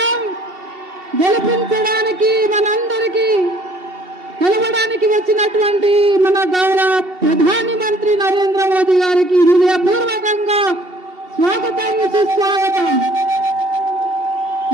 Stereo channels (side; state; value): left; late; 2.7 ms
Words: గెలిపించడానికి మనందరికీ కలవడానికి వచ్చినటువంటి మన గౌరవ ప్రధాని మంత్రి నరేంద్ర మోదీ గారికి హృదయపూర్వకంగా స్వాగతం సుస్వాగతం.